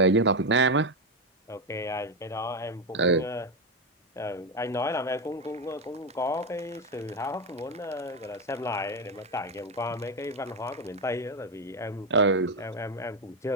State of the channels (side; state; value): both; normal; correlation 0.10